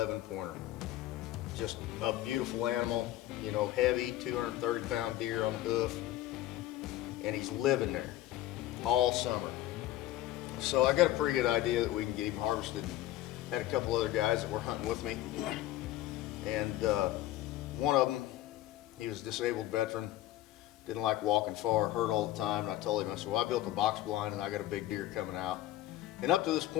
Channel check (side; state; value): right; quieter; 14.6 dB